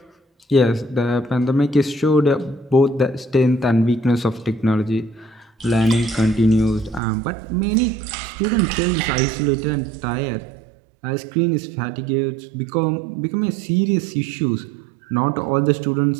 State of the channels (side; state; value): left; drops out; at 7.0 s